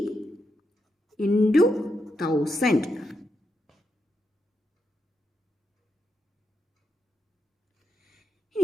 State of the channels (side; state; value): both; normal; correlation 0.84